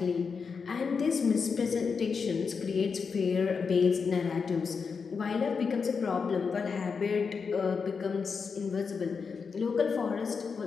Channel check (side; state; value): right; quieter; 5.5 dB